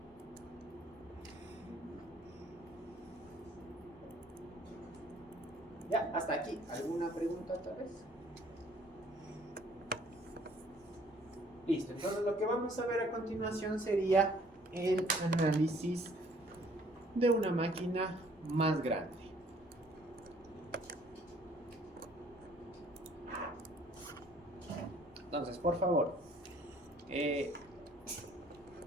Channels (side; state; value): both; normal; correlation 0.59